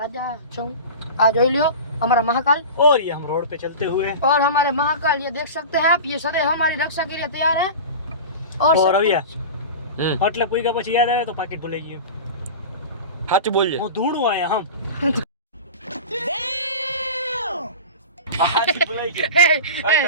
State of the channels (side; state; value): both; inverted; correlation -0.31